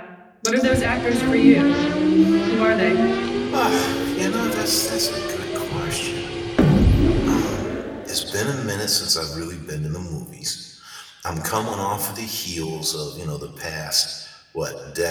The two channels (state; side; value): identical; both; correlation 1.00